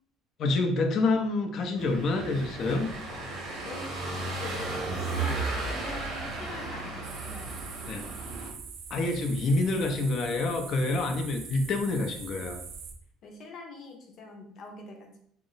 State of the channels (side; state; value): both; normal; correlation 0.66